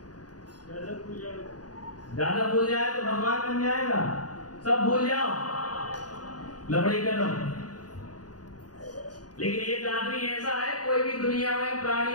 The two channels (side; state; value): right; late; 0.68 ms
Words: ज्यादा भूल जाए तो भगवान बन जाएगा। सब भूल जाओ, लबड़ी कदम। लेकिन एक आदमी ऐसा है, कोई भी दुनिया में